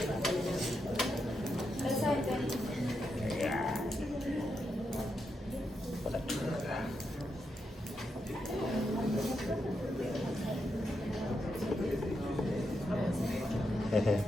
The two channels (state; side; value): normal; both; correlation 0.84